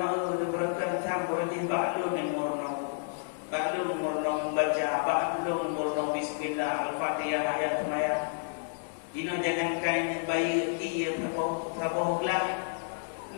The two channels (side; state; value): right; silent; digital silence